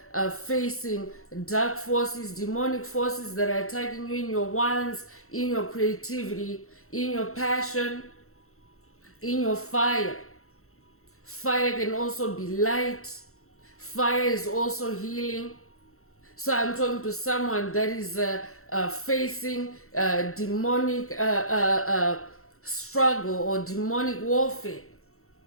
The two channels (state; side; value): late; right; 0.63 ms